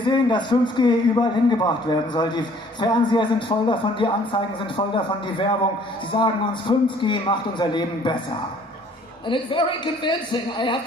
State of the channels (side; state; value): both; normal; correlation 0.57